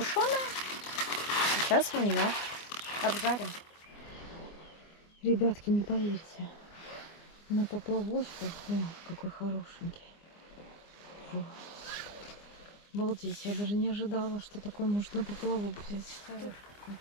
Сейчас мы ее обжарим. Ребятки, не поверите, на поплавочку, какой хорошенький. Фу. Обалдеть, я даже не ожидала, что такой может на поплавок взять. Хороший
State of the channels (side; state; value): right; late; 24 ms